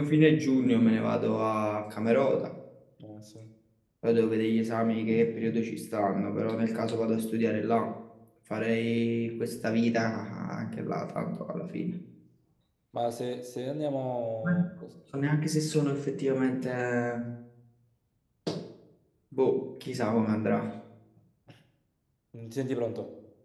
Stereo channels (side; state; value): both; identical; correlation 1.00